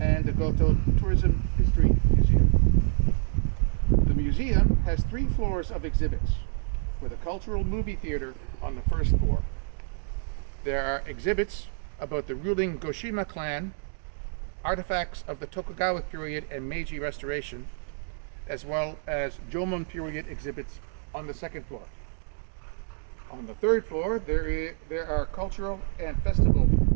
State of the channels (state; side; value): silent; left; digital silence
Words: the Goto Tourism History Museum. The museum has 3 floors of exhibits, with a cultural movie theater on the first floor. There are exhibits about the ruling Goshima clan, artifacts of the Tokugawa period and Meiji Restoration, as well as Jomon period exhibits on the second floor. On the third floor, there are cultural and festival